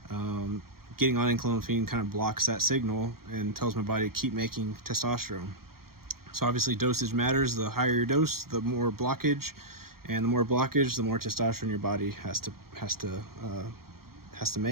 Getting on enclomiphene kind of blocks that signal and tells my body to keep making testosterone. So obviously dosage matters. The higher your dose, the more blockage, and the more blockage, the more testosterone your body has to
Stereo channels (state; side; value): late; left; 0.93 ms